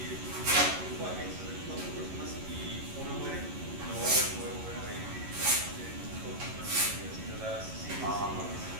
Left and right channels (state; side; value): late; left; 11 ms